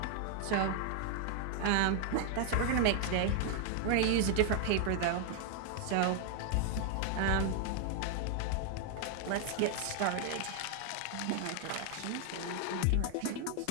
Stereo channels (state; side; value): different; both; correlation 0.00